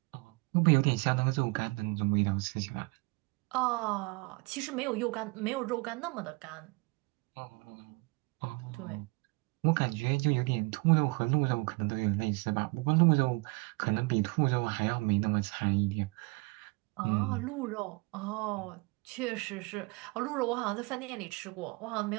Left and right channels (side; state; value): left; quieter; 26.8 dB